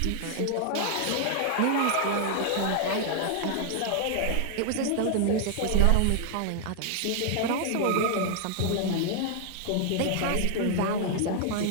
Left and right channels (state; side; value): different; both; correlation 0.00